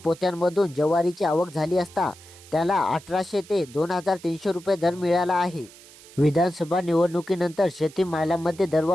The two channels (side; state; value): right; noise; hiss, 21 dB below the sound